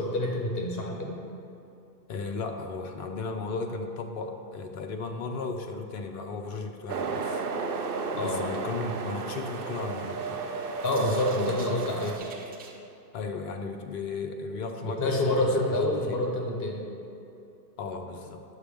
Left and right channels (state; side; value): late; right; 2.6 ms